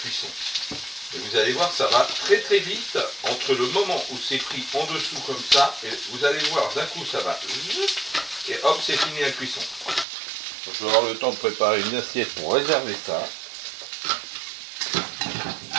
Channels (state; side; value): drops out; left; at 10.1 s